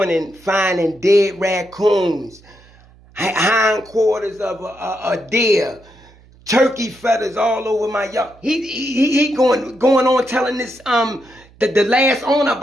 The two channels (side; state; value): right; noise; hum, 27 dB below the sound